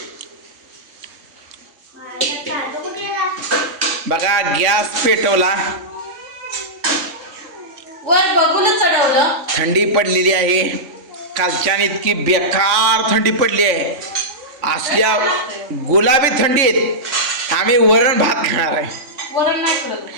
बघा गॅस पेटवला. वर बघून चढवलं. थंडी पडलेली आहे. कालच्यान इतकी बेकार थंडी पडली आहे. असल्या गुलाबी थंडीत आम्ही वरण भात खाणार आहे. वरण नाही करत.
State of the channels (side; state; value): left; late; 3.5 ms